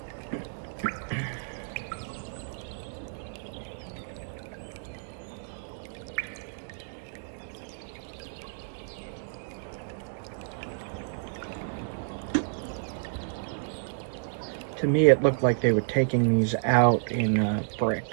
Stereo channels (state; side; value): silent; left; digital silence